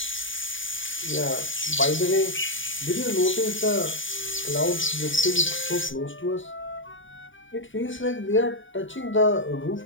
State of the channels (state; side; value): late; right; 0.56 ms